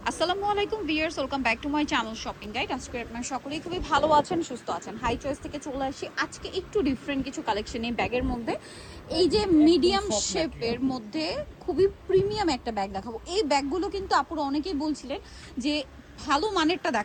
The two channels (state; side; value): identical; both; correlation 1.00